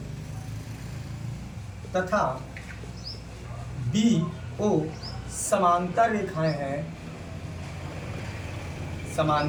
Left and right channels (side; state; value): both; identical; correlation 1.00